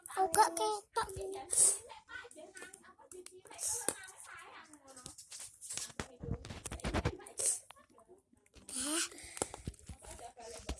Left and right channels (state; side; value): identical; both; correlation 1.00